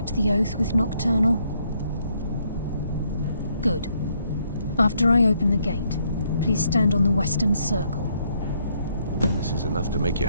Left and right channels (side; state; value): both; inverted; correlation -0.72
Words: the oath with Nocturnal? Good. After I open the gate, please stand on the western circle. This is enough to make your